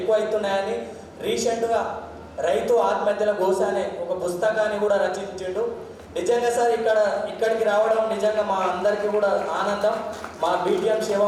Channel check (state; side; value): identical; both; correlation 1.00